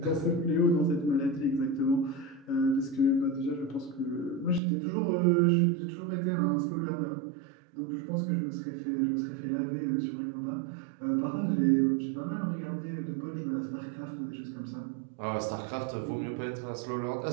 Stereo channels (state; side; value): drops out; left; at 4.6 s